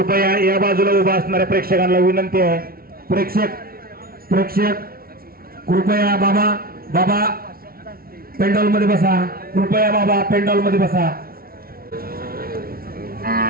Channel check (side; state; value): left; late; 0.43 ms